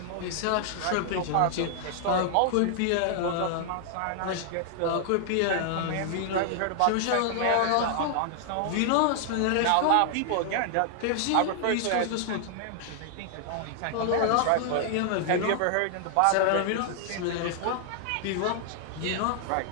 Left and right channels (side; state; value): both; different; correlation -0.01